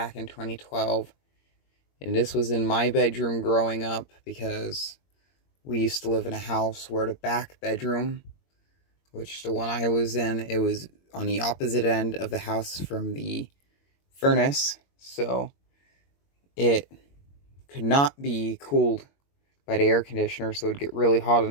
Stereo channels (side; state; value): right; late; 21 ms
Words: in 2012. And this was in my bedroom growing up because we used to live in a house where the back bedroom, which the one I was in, it was on the opposite end of the house from the furnace, so it could not be cooled by the air conditioner, so it would get really hot